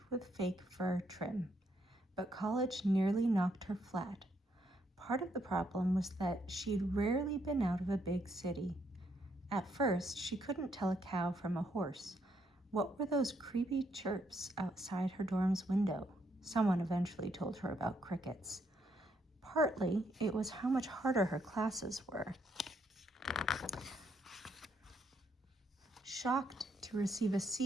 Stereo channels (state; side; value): normal; both; correlation 0.74